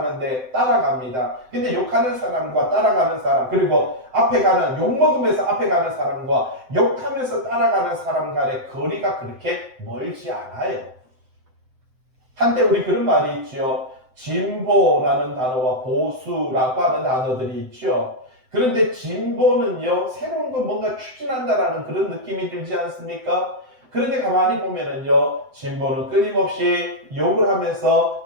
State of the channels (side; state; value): left; late; 7.8 ms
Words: 따라갑니다. 근데 욕하는 사람과 따라가는 사람, 그리고 앞에 가는, 욕먹으면서 앞에 가는 사람과 욕하면서 따라가는 사람 간의 거리가 그렇게 멀지 않아요. 한때 우리 그런 말이 있죠. 진보라는 단어와 보수라고 하는 단어들이 있죠. 그런데 진보는요, 새로운 거 뭔가 추진한다라는 그런 느낌이 들지 않습니까? 그런데 가만히 보면은요, 진보는 끊임없이 욕을 하면서